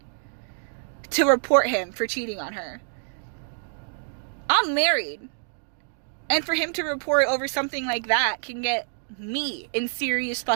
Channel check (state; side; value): silent; left; digital silence